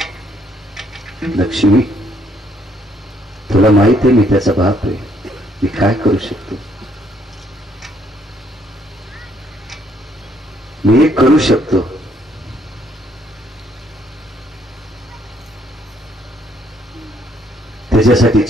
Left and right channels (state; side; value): normal; both; correlation 0.69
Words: लक्ष्मी, तुला माहित आहे मी त्याचा बाप आहे, मी काय करू शकतो? मी एक करू शकतो. त्याच्यासाठी